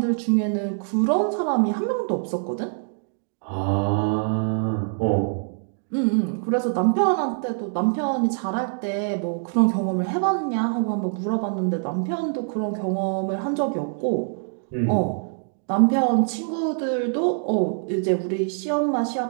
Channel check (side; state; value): left; silent; digital silence